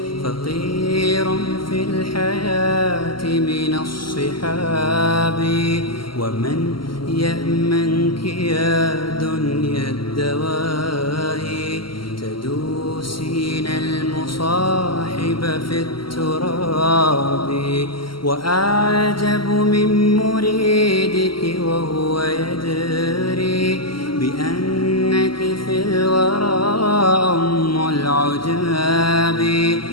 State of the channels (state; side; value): late; right; 0.73 ms